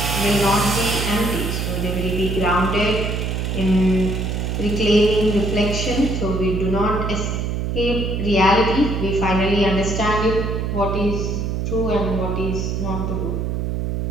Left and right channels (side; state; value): right; noise; hum, 1 dB below the sound